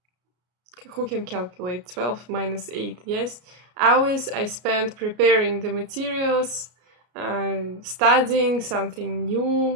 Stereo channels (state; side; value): late; left; 33 ms